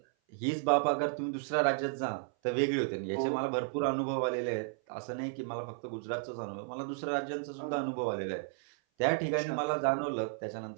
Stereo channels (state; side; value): silent; left; 56 dB below the other